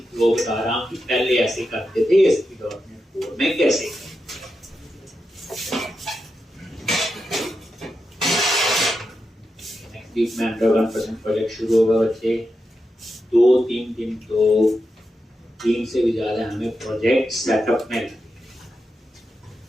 फ्लो बता रहा हूँ कि पहले ऐसे करते थे ASP.NET Core में कैसे। नेक्स्ट वीक में 101% प्रोजेक्ट शुरू होगा बच्चे। 2-3 दिन तो 3 से भी ज्यादा हमें प्रोजेक्ट सेटअप में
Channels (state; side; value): normal; both; correlation 0.88